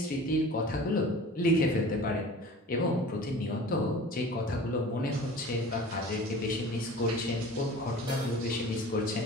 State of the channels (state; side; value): normal; both; correlation 0.41